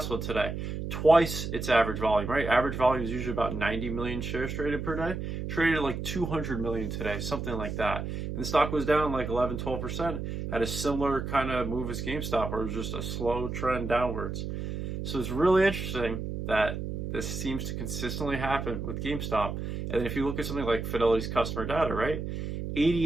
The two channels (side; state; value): right; noise; hum, 5 dB below the sound